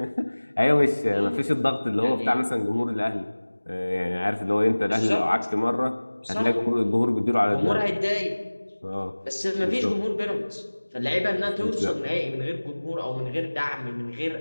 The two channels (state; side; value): inverted; both; correlation -1.00